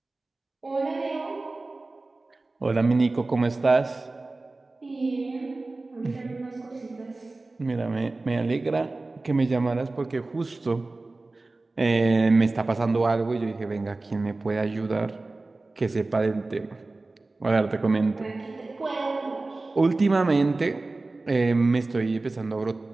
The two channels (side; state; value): left; quieter; 3.3 dB